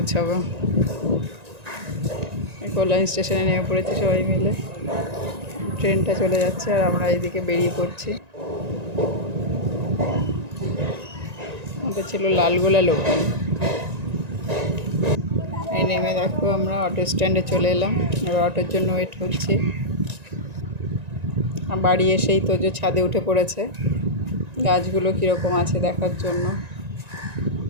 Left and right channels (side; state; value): left; late; 1.9 ms